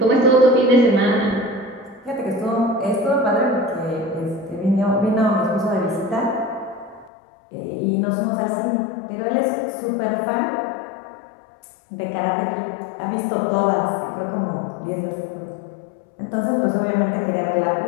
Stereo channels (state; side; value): drops out; right; at 7.1 s